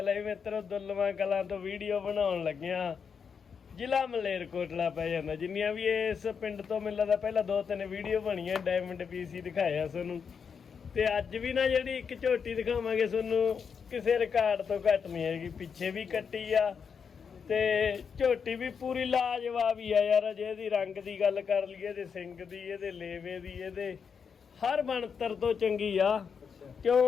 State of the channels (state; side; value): quieter; right; 6.4 dB